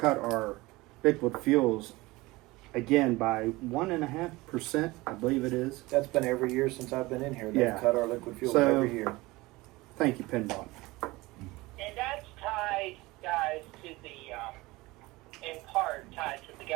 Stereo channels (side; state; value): left; quieter; 21.1 dB